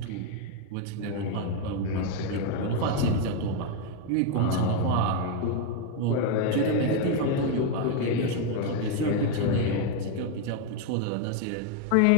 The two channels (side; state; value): both; different; correlation 0.01